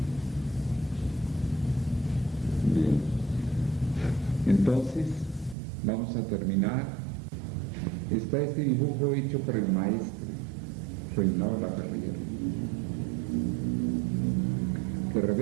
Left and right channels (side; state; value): left; drops out; at 5.6 s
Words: Bien. Entonces, vamos a terminar. Está este dibujo hecho por el maestro Reinaldo Laperrière, que